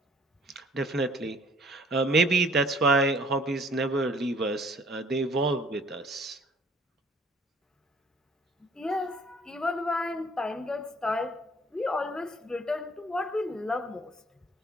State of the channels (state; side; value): normal; both; correlation 0.56